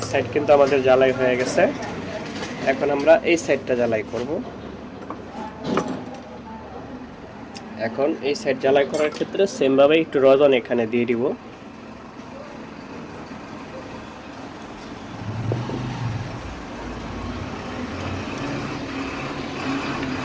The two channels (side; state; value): both; identical; correlation 1.00